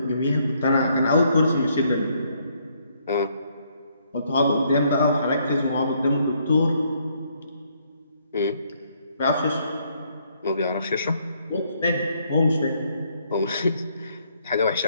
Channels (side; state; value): both; inverted; correlation -0.70